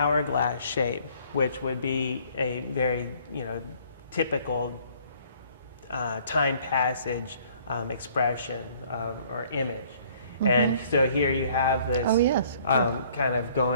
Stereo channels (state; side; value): inverted; both; correlation -0.59